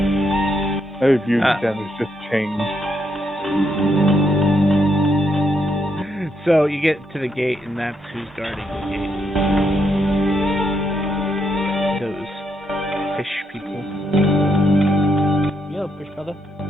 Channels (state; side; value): normal; both; correlation 0.78